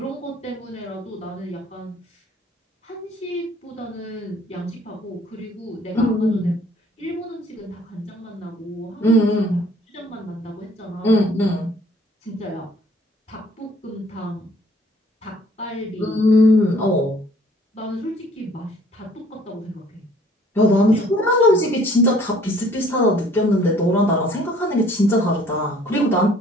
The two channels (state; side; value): normal; both; correlation 0.57